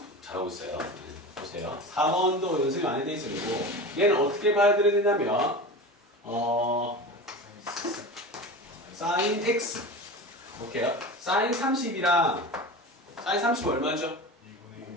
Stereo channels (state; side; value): normal; both; correlation 0.30